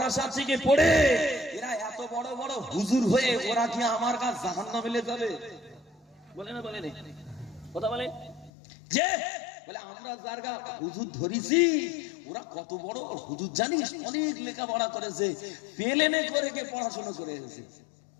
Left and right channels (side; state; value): right; drops out; at 8.5 s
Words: থেকে পড়ে, এরা এত বড় বড় হুজুর হয়ে ওরা কি আমার কাছে জাহান্নামে চলে যাবে? বলে না, বলে না, কথা বলে, যে বলে আমরা যারগা হুজুর ধরেছি, ওরা কত বড় হুজুর জানিস, অনেক লেখাপড়া করেছে, পেলেনে করে কে পড়াশোনা করে এসেছে,